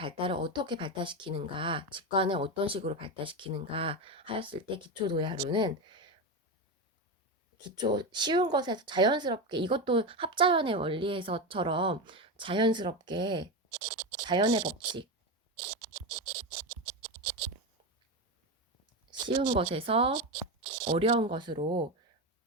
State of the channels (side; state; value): both; normal; correlation 0.16